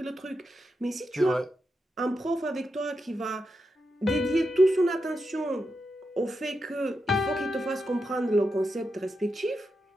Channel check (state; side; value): normal; both; correlation 0.87